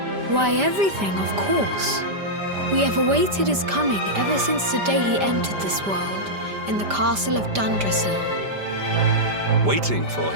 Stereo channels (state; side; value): late; left; 5.1 ms